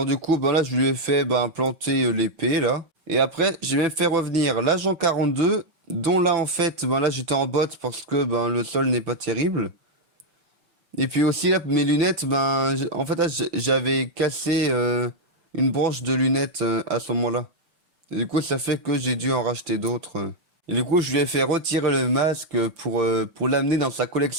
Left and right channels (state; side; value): late; left; 6.0 ms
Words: du coup, bah là, je lui ai fait planter l'épée, là. Et après, j'ai même fait revenir l'agent 42, dont là, en fait, là, j'étais en botte parce que le sol n'est pas terrible. Et puis aussi là, mes lunettes, en fait là, j'avais cassé une branche de lunettes à ce moment-là. Et du coup, ça fait que j'ai dû en racheter d'autres. Et du coup, je lui ai fait retirer le masque pour l'amener dans sa